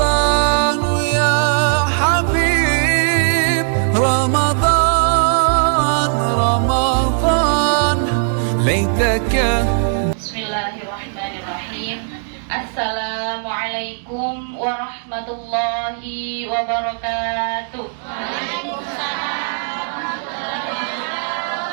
يا حبيب رمضان رمضان ليتك. Bismillahirrahmanirrahim. Assalamualaikum warahmatullahi wabarakatuh.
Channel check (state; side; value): silent; left; digital silence